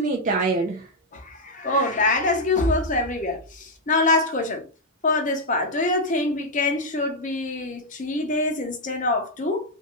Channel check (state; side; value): normal; both; correlation -0.01